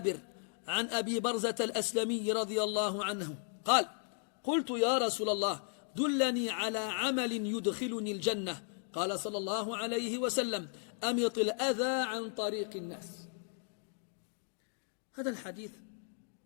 عن أبي برزة الأسلمي رضي الله عنه قال قلت يا رسول الله دلني على عمل يدخلني الجنة قال صلى الله عليه وسلم أمط الأذى عن طريق الناس. هذا الحديث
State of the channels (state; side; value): silent; right; 54 dB below the other